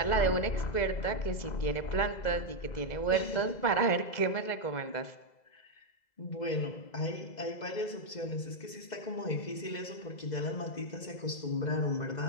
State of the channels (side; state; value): right; late; 2.0 ms